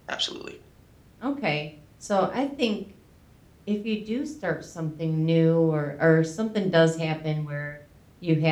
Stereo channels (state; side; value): identical; both; correlation 1.00